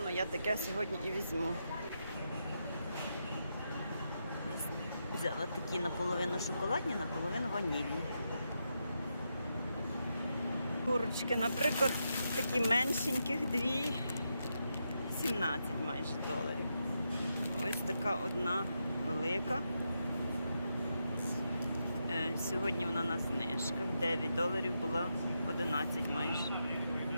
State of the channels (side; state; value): both; inverted; correlation -0.84